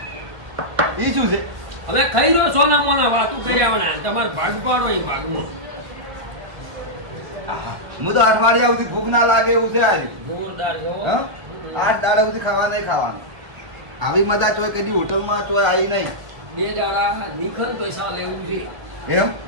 એ શું છે હવે ખાઈ રહ્યો સોના મોના વાતું કર્યા વણા તમારે ભાગ પાડો એ ભાગમાં હું તો અઠવાડિયા સુધી ભૂખ ના લાગે એવું છે આજે જોરદાર છો હા 8 દાડા સુધી ખાવા નહીં ખાવાનું આવી મજા ચોય કદી હોટલમાં ચોય આવી નહીં બે દાડા નિખન પૈસા લેવું છે એમ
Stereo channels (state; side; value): late; left; 1.5 ms